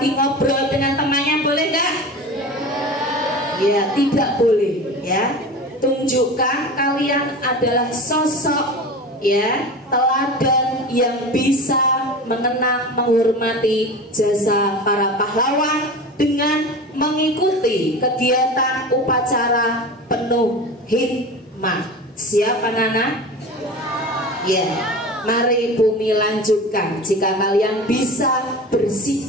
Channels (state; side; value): normal; both; correlation 0.32